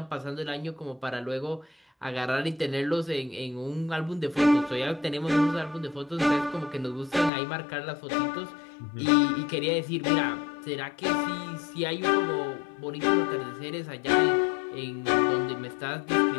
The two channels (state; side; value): drops out; right; at 7.3 s